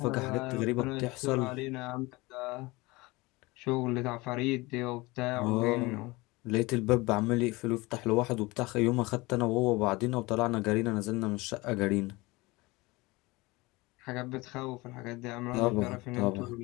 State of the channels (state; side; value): quieter; right; 22.8 dB